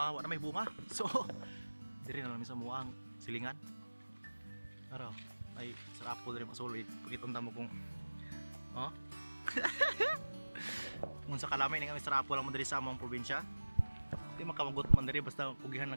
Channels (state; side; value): inverted; both; correlation -1.00